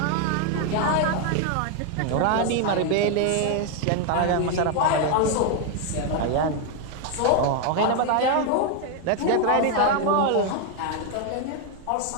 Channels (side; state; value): both; different; correlation 0.01